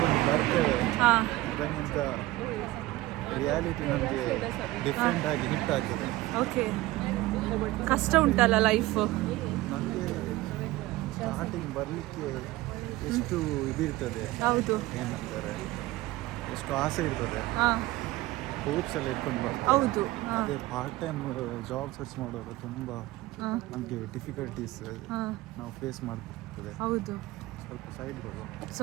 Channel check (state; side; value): quieter; left; 18.3 dB